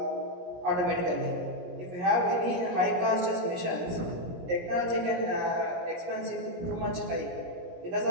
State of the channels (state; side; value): late; left; 17 ms